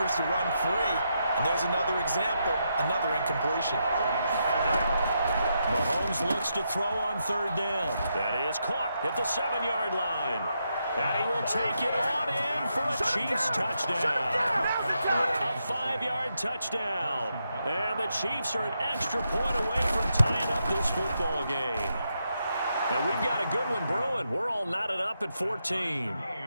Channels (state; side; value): inverted; both; correlation -0.82